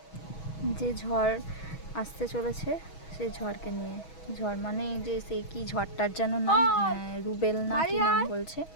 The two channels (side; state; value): right; late; 6.3 ms